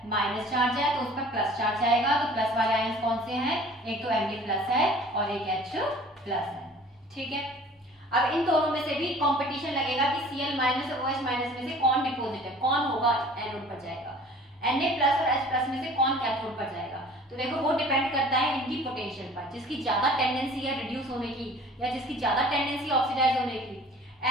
माइनस चार्ज है, तो उस पर प्लस चार्ज आएगा। तो प्लस वाले आयंस कौन से हैं, एक तो Na+ है और एक H+ है। ठीक है, अब इन दोनों में से भी कंपटीशन लगेगा कि Cl- और OH- में से कौन डिपॉजिट है, कौन होगा एनोड पर जाएगा, Na+ और H+ में से कौन कैथोड पर जाएगा। तो देखो वो डिपेंड करता है इनकी पोटेंशियल पर, जिसकी ज्यादा टेंडेंसी है रिड्यूस होने की या जिसकी ज्यादा टेंडेंसी ऑक्सीडाइज होने की।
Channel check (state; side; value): normal; both; correlation 0.48